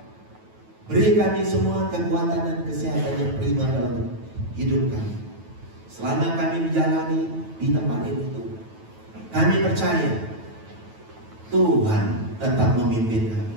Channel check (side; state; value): left; late; 9.2 ms